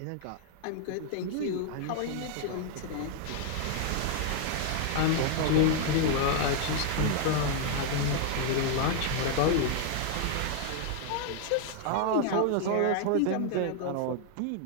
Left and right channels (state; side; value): different; both; correlation 0.00